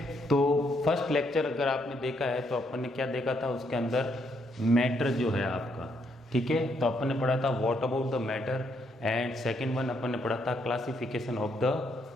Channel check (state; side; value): normal; both; correlation 0.74